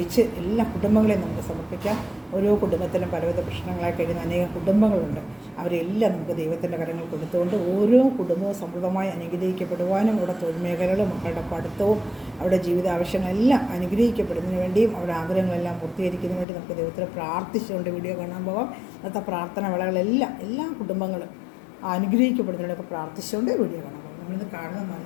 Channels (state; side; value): drops out; right; at 16.4 s